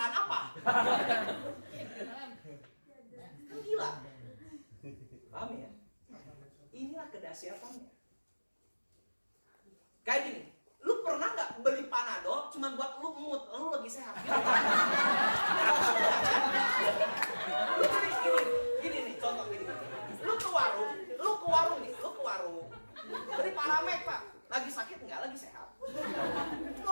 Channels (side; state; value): both; inverted; correlation -1.00